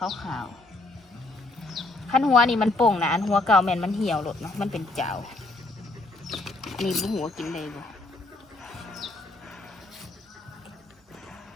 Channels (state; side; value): quieter; right; 3.0 dB